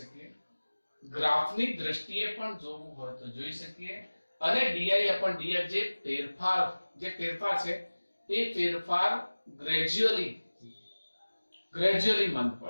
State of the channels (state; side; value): inverted; both; correlation -1.00